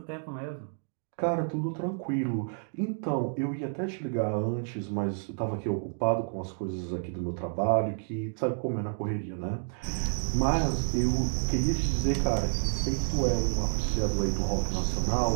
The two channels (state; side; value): silent; left; 58 dB below the other